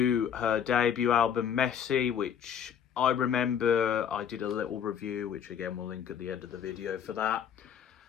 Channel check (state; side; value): quieter; right; 8.4 dB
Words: her debut album, Messy, which I remember I did a little review, which again we'll link at the end of the video for that.